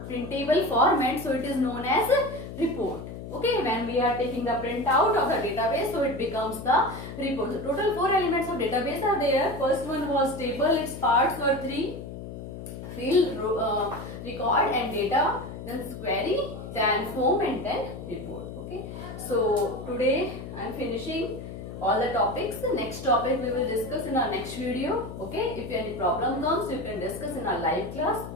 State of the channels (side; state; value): left; noise; hum, 10 dB below the sound